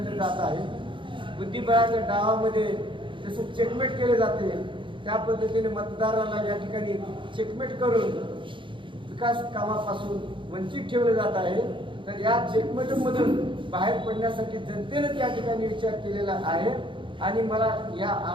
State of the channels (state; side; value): late; left; 0.24 ms